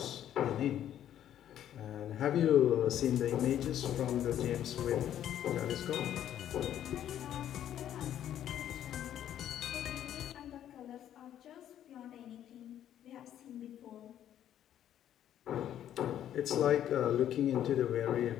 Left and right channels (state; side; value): quieter; right; 10.9 dB